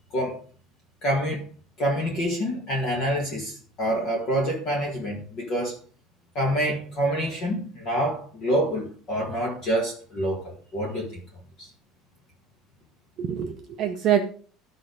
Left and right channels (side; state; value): both; normal; correlation 0.43